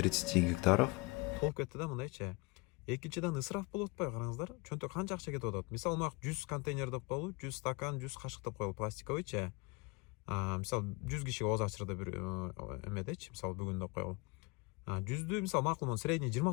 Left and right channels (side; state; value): right; quieter; 26.9 dB